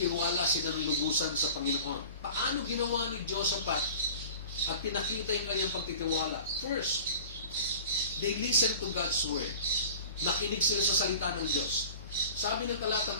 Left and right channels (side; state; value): both; inverted; correlation -0.41